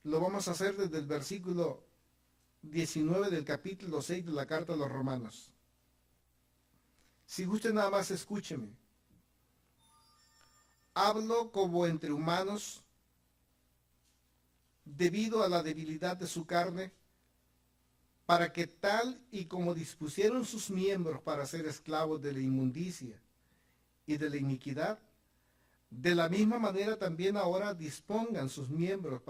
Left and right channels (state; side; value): identical; both; correlation 1.00